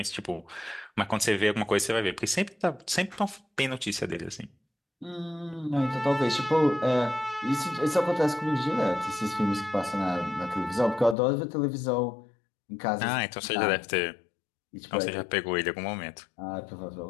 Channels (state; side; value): drops out; right; at 11.2 s